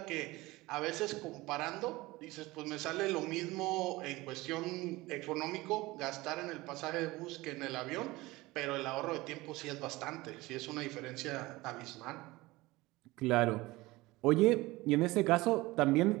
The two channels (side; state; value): left; quieter; 20.4 dB